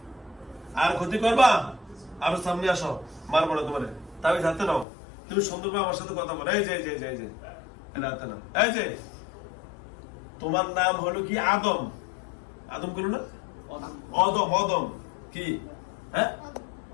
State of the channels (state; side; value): drops out; right; at 4.9 s